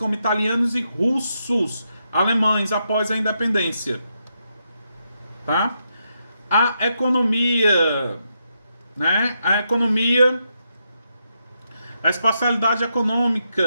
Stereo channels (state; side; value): inverted; both; correlation -0.82